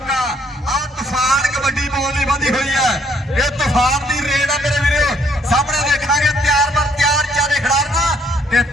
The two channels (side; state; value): both; normal; correlation 0.66